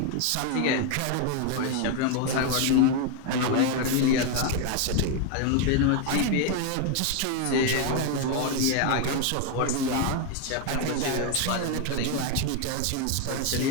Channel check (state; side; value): different; both; correlation 0.01